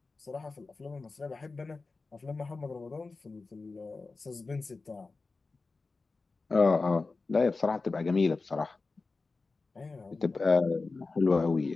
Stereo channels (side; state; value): right; quieter; 3.9 dB